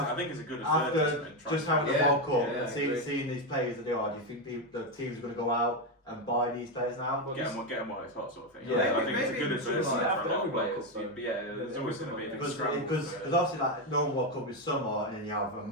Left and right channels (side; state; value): both; normal; correlation 0.08